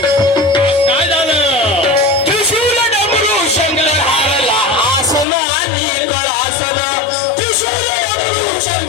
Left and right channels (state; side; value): drops out; right; at 5.2 s